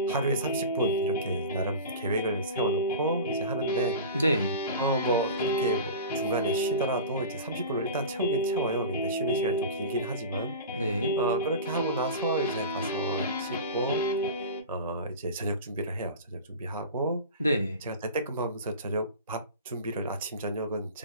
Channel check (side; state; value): both; inverted; correlation -0.32